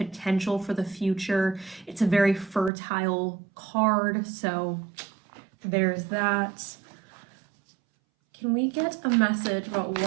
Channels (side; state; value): left; drops out; at 2.7 s